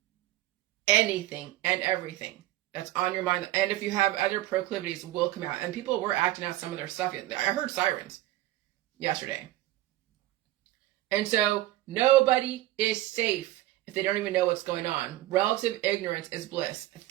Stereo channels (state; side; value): quieter; left; 16.0 dB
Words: Anything and everything that's on your mind. And if you have other proclivities, will come out. And people were acting out some of their stuff. I heard sirens yesterday. And so nobody is safe if they don't even know what's going on. Relative ignorance is bliss.